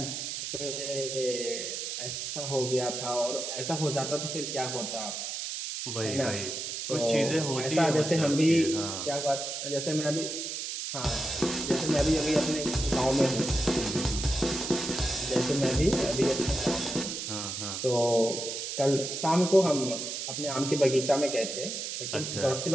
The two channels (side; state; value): right; noise; hiss, 5 dB below the sound